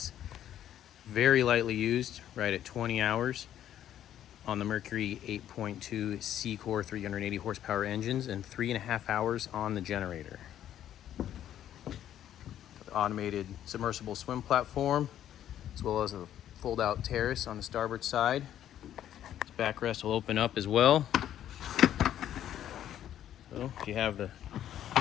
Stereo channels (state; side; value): quieter; right; 11.2 dB